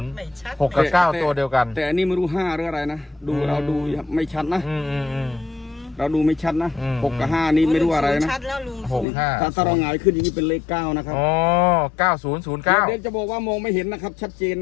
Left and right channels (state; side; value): drops out; right; at 9.1 s